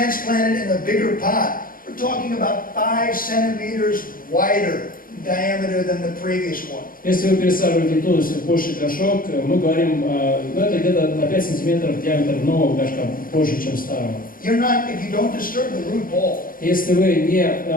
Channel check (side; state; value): right; late; 0.41 ms